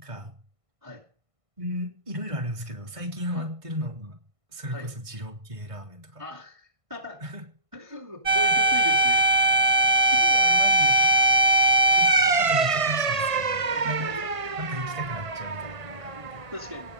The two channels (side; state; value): left; late; 1.5 ms